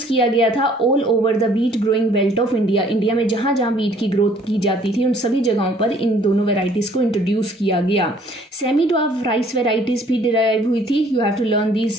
किया गया था all over the wheat growing belt of India. India में जहाँ जहाँ वीट की ग्रोथ की जाती थी उन सभी जगहों पर इन दोनों वेराइटीज़ को इंट्रोड्यूस किया गया। सेमी ड्वार्फ राइस वेराइटीज़ भी डिराइव हुई थी। You have to learn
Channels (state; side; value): normal; both; correlation 0.59